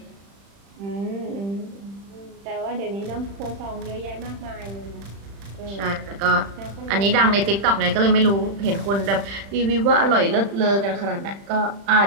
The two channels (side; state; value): left; late; 35 ms